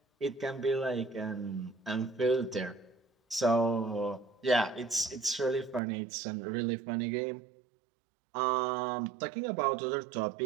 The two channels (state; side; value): drops out; left; at 5.8 s